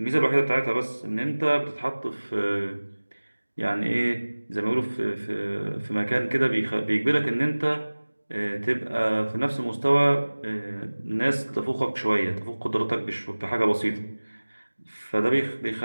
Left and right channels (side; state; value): both; inverted; correlation -1.00